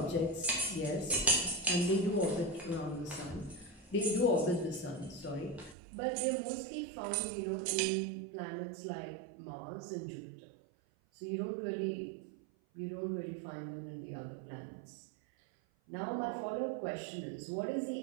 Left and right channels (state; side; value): drops out; left; at 5.8 s